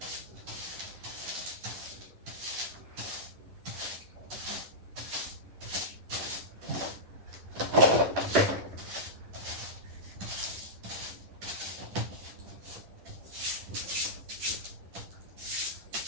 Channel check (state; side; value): late; left; 10 ms